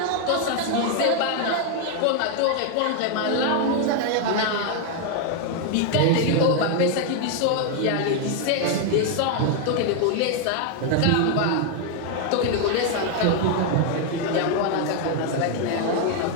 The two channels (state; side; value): different; both; correlation 0.00